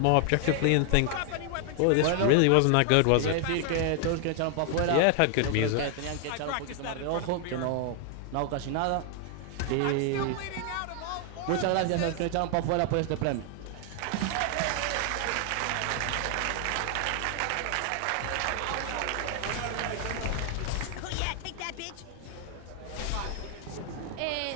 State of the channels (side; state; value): both; different; correlation 0.00